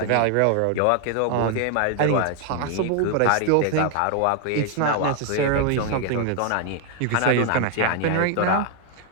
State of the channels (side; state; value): both; different; correlation 0.00